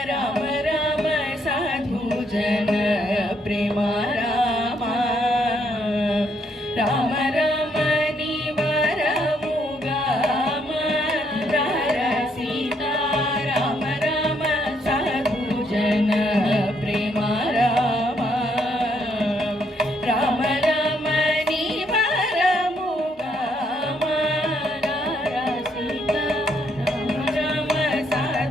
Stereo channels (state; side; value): normal; both; correlation 0.72